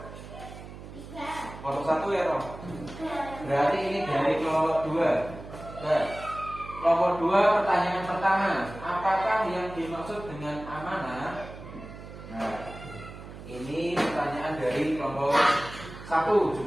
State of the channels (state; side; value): noise; right; hum, 14 dB below the sound